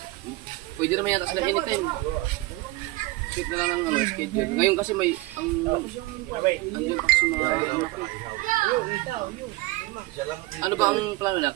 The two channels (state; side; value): quieter; left; 20.3 dB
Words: Pwede naman yata sila anytime. Set na lang ang ano, schedule. Ngayon kasi may ang taxi mga anak ko. Ano ba ang plano